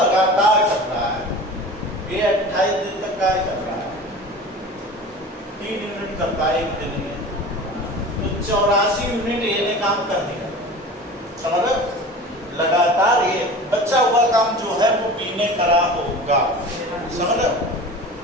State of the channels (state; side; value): normal; both; correlation 0.37